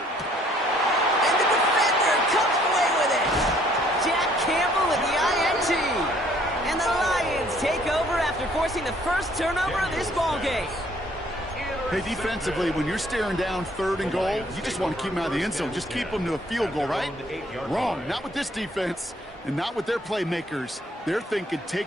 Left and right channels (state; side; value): normal; both; correlation 0.62